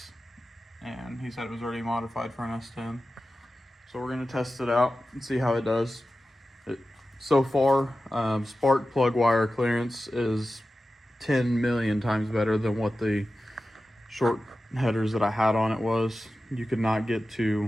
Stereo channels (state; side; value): normal; both; correlation 0.94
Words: and he said it was already modified for an S10. So we're gonna test it out and see how it does. So far, spark plug wire clearance is 10 million times better than what the short headers that I had on it was. You could not get